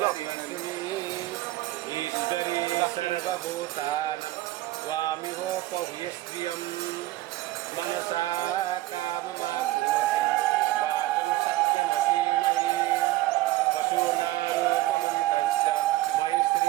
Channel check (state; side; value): quieter; left; 17.0 dB